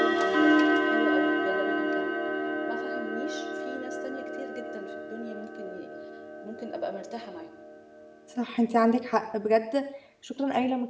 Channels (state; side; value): identical; both; correlation 1.00